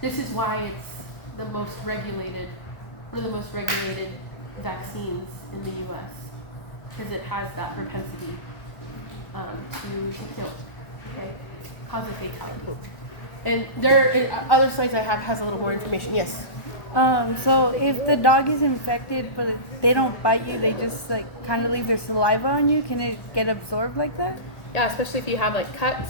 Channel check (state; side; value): late; right; 1.4 ms